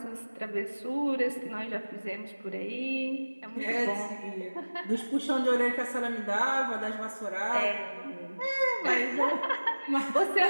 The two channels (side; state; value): both; inverted; correlation -1.00